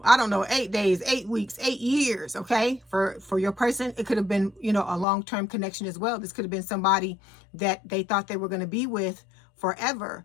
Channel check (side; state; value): right; drops out; at 5.1 s